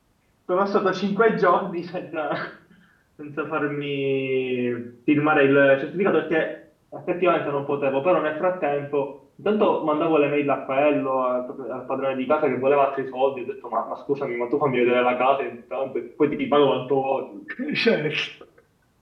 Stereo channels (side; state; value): both; identical; correlation 1.00